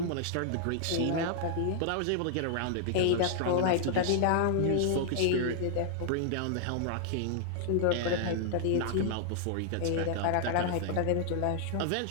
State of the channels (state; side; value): different; both; correlation -0.01